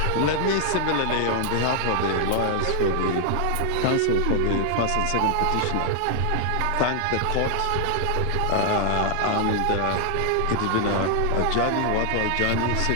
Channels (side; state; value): both; different; correlation 0.00